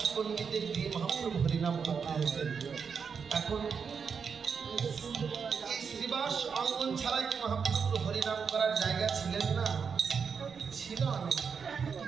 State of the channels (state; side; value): quieter; left; 6.1 dB